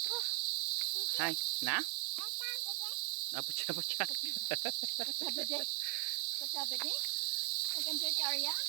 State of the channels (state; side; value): silent; left; 52 dB below the other